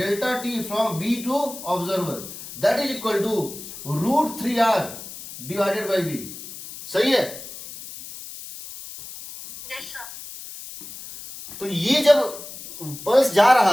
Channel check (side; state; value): left; noise; hiss, 13 dB below the sound